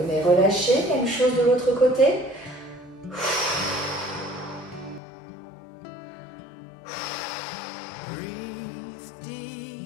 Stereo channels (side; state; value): right; drops out; at 5.0 s